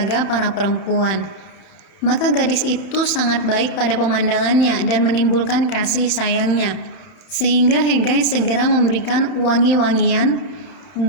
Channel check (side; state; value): right; late; 31 ms